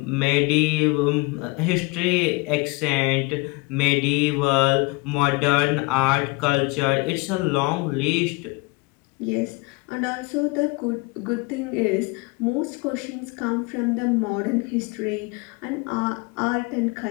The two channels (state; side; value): quieter; right; 25.8 dB